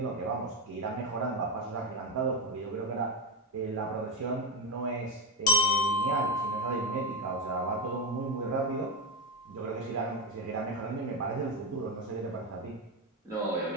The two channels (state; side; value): normal; both; correlation 0.11